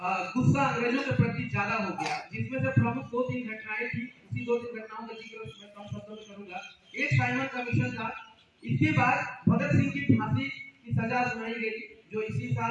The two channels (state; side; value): identical; both; correlation 1.00